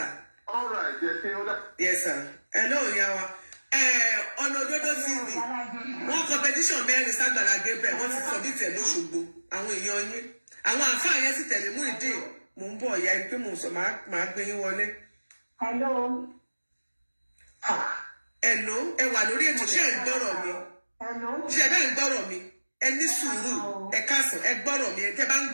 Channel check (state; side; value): inverted; both; correlation -1.00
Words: ọ̀rọ̀ ẹ̀jẹ̀ ṣe ó dá. yes sir ẹ lóò yá wa ọ̀nà òdodo TV wọ́n competition 4 ságbàlá Gabriel wọ́n ti submit ẹ̀ lóṣogbo àwọn èèyàn yín àwọn àǹfààní yẹn sì tẹ̀lé mú ìdí mò ń bọ̀ ìyá pé mò ń sọ máa gbé yín wọlé. Hello, ẹ wà lórí ètò ṣé ẹ ń gbọ́rọ̀ mi ṣé ẹ bẹ́ẹ̀ ń gbọ́rọ̀ mi ẹ ní sùúrù ẹ káàsán ẹ gbọ́rọ̀ mi ẹ tẹ́ bá ń